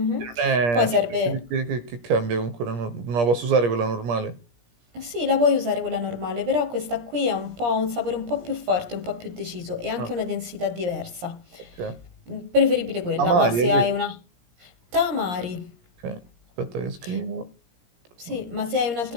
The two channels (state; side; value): late; left; 17 ms